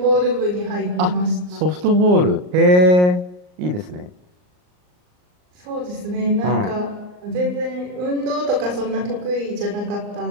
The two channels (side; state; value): left; late; 39 ms